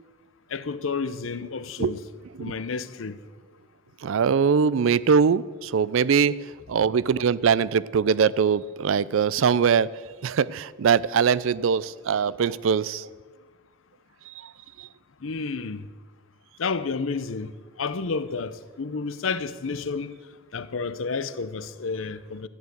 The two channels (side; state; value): left; quieter; 4.6 dB